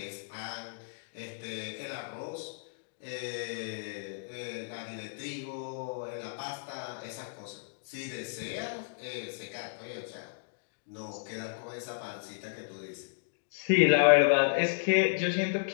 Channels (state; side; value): silent; right; digital silence